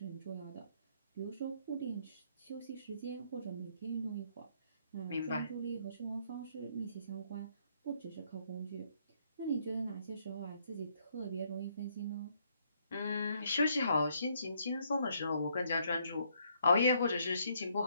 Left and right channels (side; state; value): both; inverted; correlation -0.70